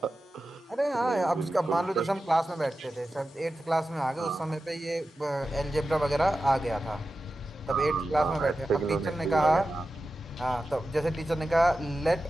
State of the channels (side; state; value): both; normal; correlation 0.93